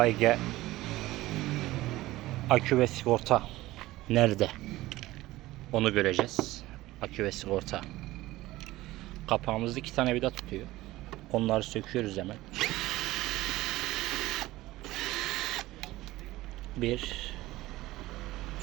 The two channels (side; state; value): left; quieter; 17.5 dB